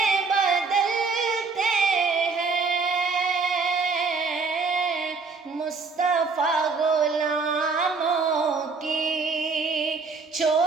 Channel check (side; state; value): left; quieter; 4.5 dB